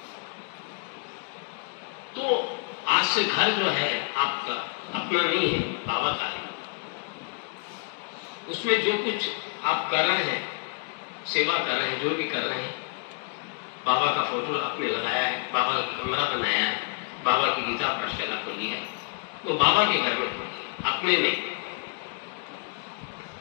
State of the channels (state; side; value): quieter; right; 35.8 dB